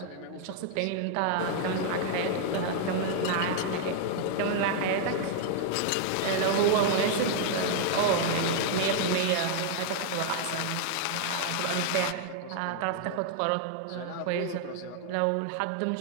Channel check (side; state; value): both; different; correlation 0.00